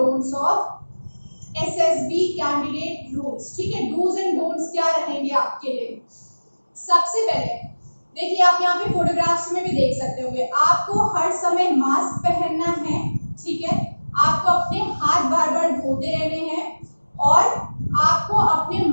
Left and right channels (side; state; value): both; inverted; correlation -1.00